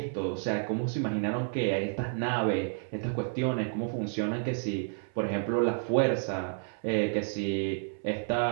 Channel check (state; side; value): silent; left; 58 dB below the other